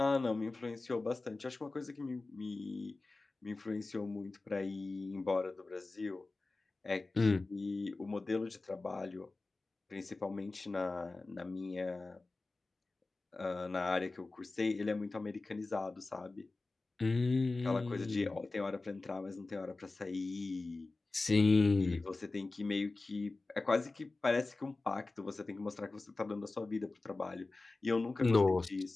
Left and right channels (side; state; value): right; quieter; 3.4 dB